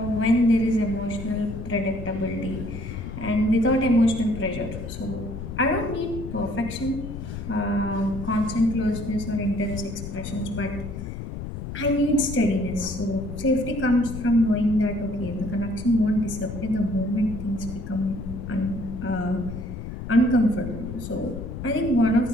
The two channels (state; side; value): noise; left; rumble, 8 dB below the sound